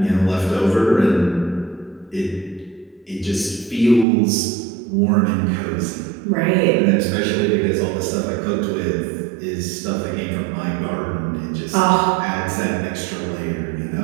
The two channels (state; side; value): drops out; left; at 4.0 s